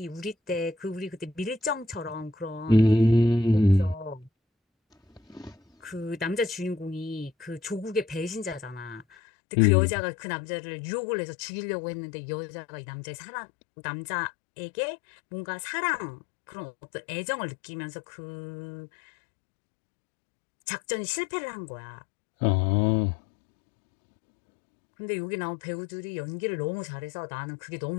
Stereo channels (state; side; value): drops out; right; at 9.1 s